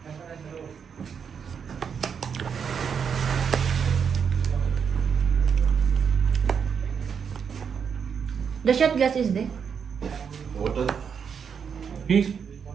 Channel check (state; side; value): quieter; left; 6.9 dB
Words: The shot glass is there. Water. Please.